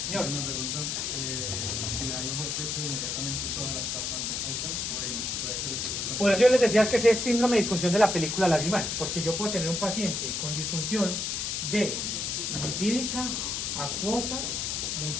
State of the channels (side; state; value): left; noise; hiss, 1 dB below the sound